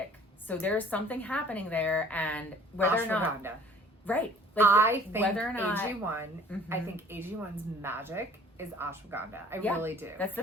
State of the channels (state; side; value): normal; both; correlation 0.53